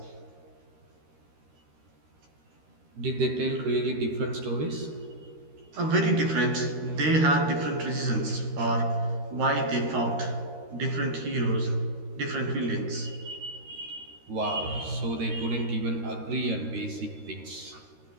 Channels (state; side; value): late; left; 13 ms